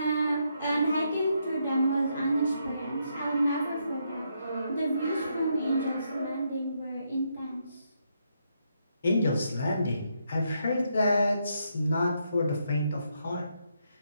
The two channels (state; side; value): inverted; both; correlation -0.78